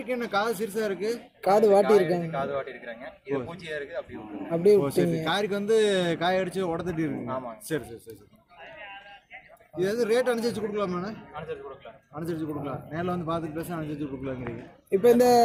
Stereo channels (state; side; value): identical; both; correlation 1.00